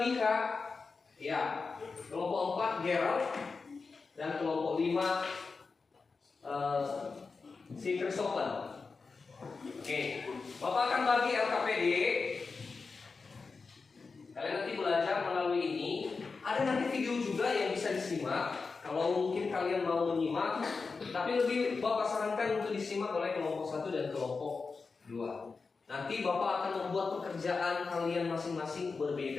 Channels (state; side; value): quieter; right; 4.5 dB